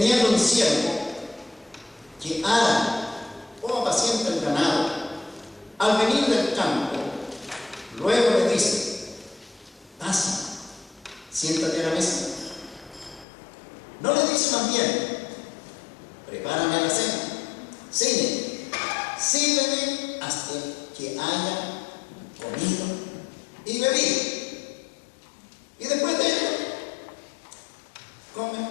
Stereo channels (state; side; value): drops out; right; at 13.2 s